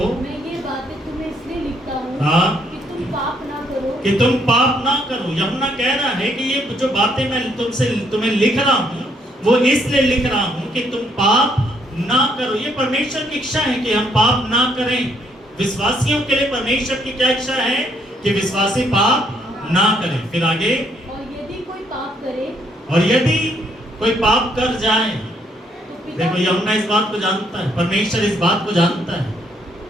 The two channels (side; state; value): both; normal; correlation 0.70